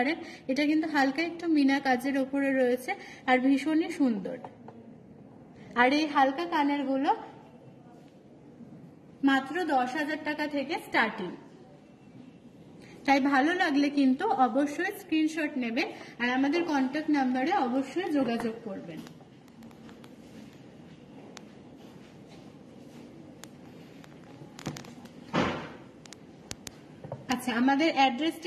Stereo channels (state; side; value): identical; both; correlation 1.00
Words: এটা কিন্তু হালকা একটু মিনা কাজের ওপরে রয়েছে আর ভীষণই সুন্দর। আর এই হালকা কানের গুলো মাত্র 10,000 টাকা থেকে স্টার্টিং। তাই ভালো লাগলে কিন্তু অবশ্যই স্ক্রিনশট নেবেন আর আমাদের কন্ট্যাক্ট নাম্বারে অবশ্যই যোগাযোগ করবেন। আচ্ছা, আমাদের